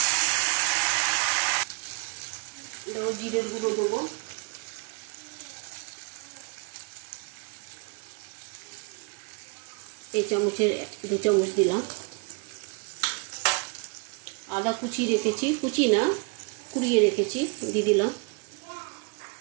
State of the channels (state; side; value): quieter; left; 33.2 dB